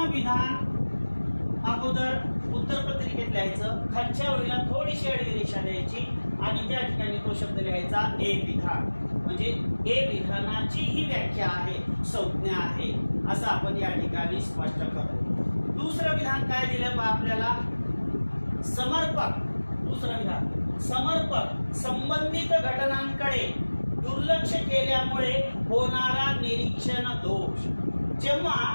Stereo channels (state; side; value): inverted; both; correlation -1.00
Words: विधान अगोदर उत्तरपत्रिकेत लिहायचं, खालच्या ओळीला थोडीशी आडवी रेषा द्यायची आणि त्या ठिकाणी तो शब्द लिहायचा ए विधान. म्हणजे ए विधानाची ही व्याख्या आहे, संज्ञा आहे असं आपण या ठिकाणी स्पष्ट करतो. दुसरं विधान काय दिलं आपल्याला? समर्पक. दुसरं विधान समर्पक संबंधित घटनांकडे दुर्लक्ष केल्यामुळे होणारा निरीक्षण दोष. जेव्हा